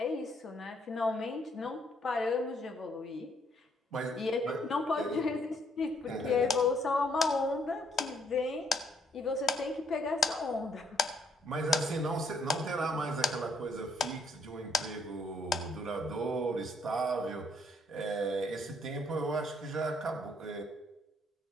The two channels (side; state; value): both; normal; correlation 0.70